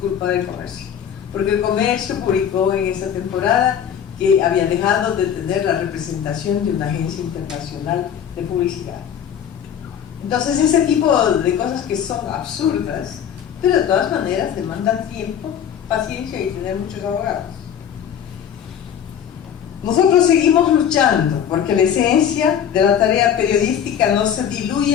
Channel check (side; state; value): right; quieter; 8.9 dB